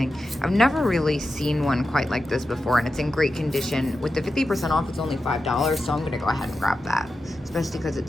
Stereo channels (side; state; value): both; normal; correlation 0.90